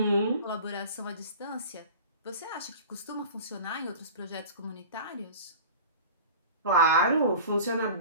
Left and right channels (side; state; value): both; inverted; correlation -0.38